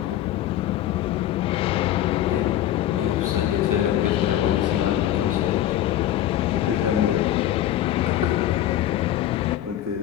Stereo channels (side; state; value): right; quieter; 12.3 dB